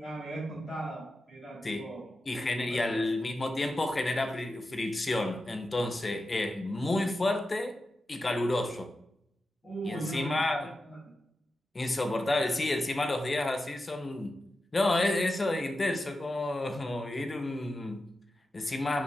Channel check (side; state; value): both; normal; correlation 0.91